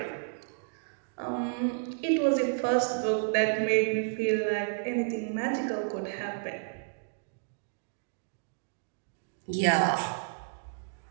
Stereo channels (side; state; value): left; silent; digital silence